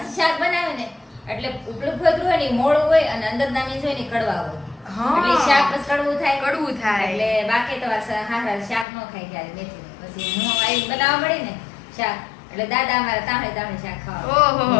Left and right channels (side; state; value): right; drops out; at 8.8 s